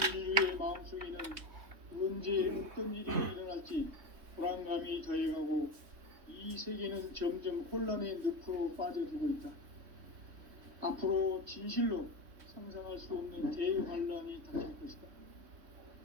인류의 마음속에는 언제 어떤 일이 일어날지 불안감이 더해가고 이 세계는 점점 혼란의 늪으로 빠져들고 있다. 앞으로 진실로 상상할 수 없는 대환란이 닥칠 것이다.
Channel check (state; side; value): late; left; 3.6 ms